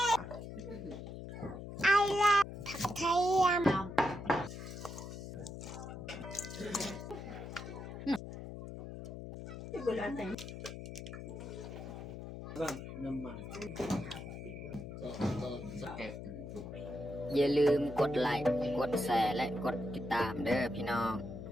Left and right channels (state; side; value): noise; left; hum, 9 dB below the sound